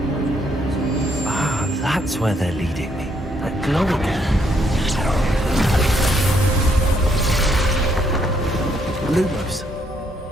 Ah, that's where they're leading me. That glow again. Lumos.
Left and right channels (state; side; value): normal; both; correlation 0.72